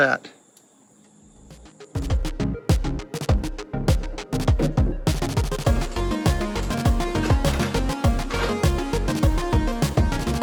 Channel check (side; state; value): both; identical; correlation 1.00